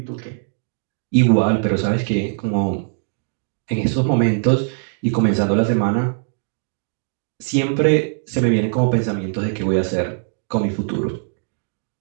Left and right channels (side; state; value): left; silent; digital silence